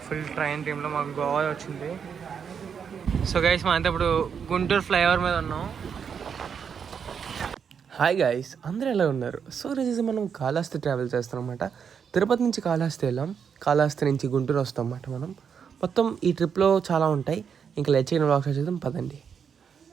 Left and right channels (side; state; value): left; quieter; 7.0 dB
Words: ఫుల్ ట్రైన్ టీంలో మాకు గోవా వచ్చింది. సో గైస్ మా అంతా ఇప్పుడు గుంటూరు ఫ్లైఓవర్ మీద ఉన్నాం. హాయ్ గైస్, అందరూ ఎలా ఉన్నారు? సో రోజు మనం కాళహస్తి ట్రావెల్ చేస్తాం అనమాట. తిరుపతి నుంచి కాళహస్తి వెళ్ళాం, కాళహస్తి నుంచి గుంటూరు వస్తాం అన్నమాట. మనం మొత్తం ఈ ట్రిప్లో చాలా ఉంటాయి. ఇంకా లెచ్చిన వ్లాగ్స్ చేద్దాం పదండి.